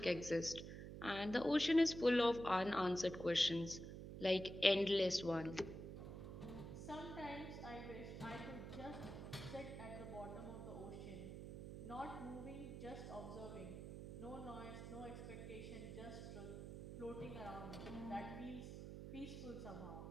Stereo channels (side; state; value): right; noise; hum, 8 dB below the sound